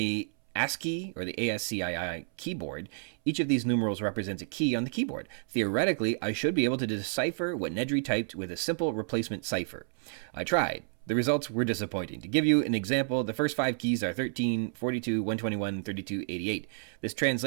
ASCII, or the ASCII keyboard, each of these numerals represents a key on the keyboard. Theoretically, I should be able to decipher what Nedry typed with a simple replacement cipher. I tried. The results were disappointing. To give you an example, the first 5 keys are 13, 42, 121, 32, 88. This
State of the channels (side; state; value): left; silent; 58 dB below the other